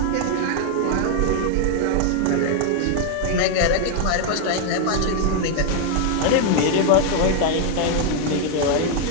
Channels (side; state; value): both; different; correlation 0.00